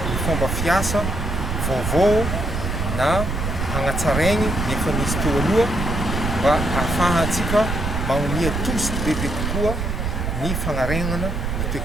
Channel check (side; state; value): right; noise; rumble, 2 dB below the sound